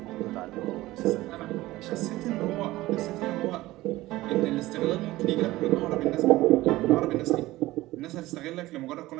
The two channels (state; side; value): quieter; left; 17.7 dB